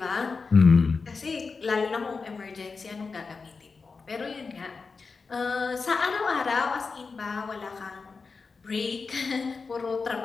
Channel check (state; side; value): quieter; right; 4.6 dB